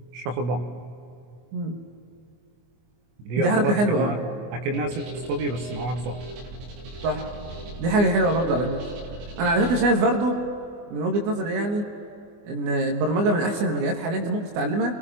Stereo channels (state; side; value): late; left; 24 ms